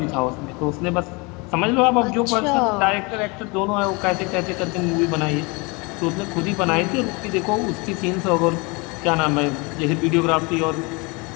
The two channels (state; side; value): quieter; right; 28.3 dB